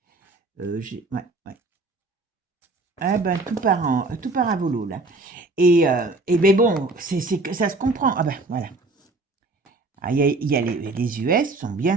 Ouais, ouais. Ah ben, tout part à volo, là. Et ben bon, ça se comprend. Ah ben, voilà. Ah, il y a les US sont bien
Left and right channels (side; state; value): left; quieter; 3.2 dB